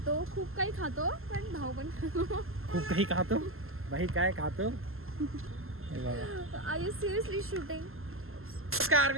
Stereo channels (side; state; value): left; late; 0.61 ms